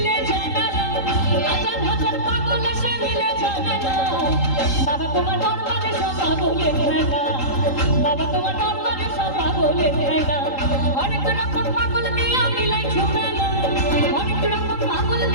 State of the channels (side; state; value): right; late; 3.8 ms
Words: জানালা, হাজার হাজার পাগল এসে মিলে জানালা। বাবা তোমার দরবারে সব পাগলের খেলা, বাবা তোমার দরবারে সব পাগলের খেলা। অনেক রকম পাগল দিয়া মিলাই ঝুমেলা, অনেক রকম পাগল